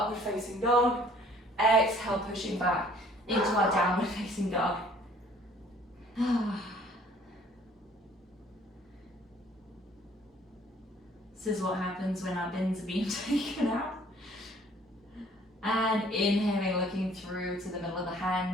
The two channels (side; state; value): both; normal; correlation 0.57